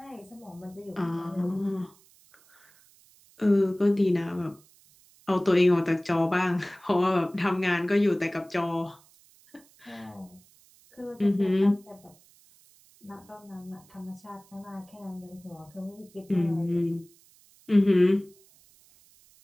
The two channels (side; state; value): right; noise; hiss, 29 dB below the sound